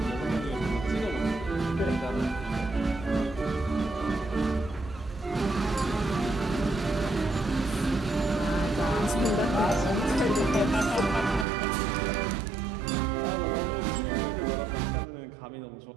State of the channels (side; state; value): left; drops out; at 11.5 s